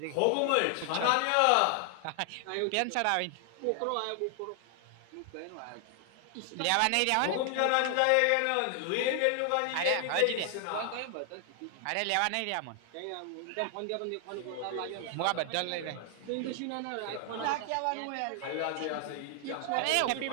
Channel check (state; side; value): different; both; correlation 0.00